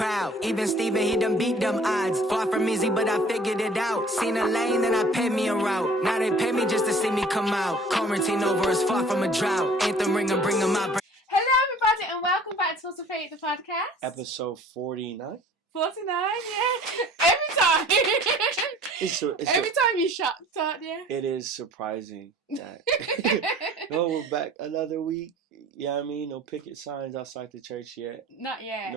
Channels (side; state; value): both; normal; correlation 0.50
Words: Even Steven, he done beat them odds. Far from easy, but I figured it out. Seen a lane, then I paid me a route. Now they pay me just to see me come out. Quarantine over is far from a drought. Anthem ring and bring them out. Hello everybody and welcome back to Uninvited, the podcast. Episode 49. 49, yeah. Every time. Every time you're shocked, aren't you? It is surprising that no, we're back another week. Yeah, I mean, no picket signs outside the church yet. Not yet.